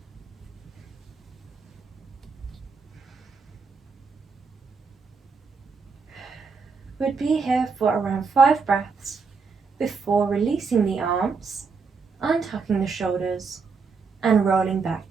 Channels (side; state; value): left; quieter; 5.0 dB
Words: We'd be here for around 5 breaths before releasing the arms, untucking the shoulders, and rolling back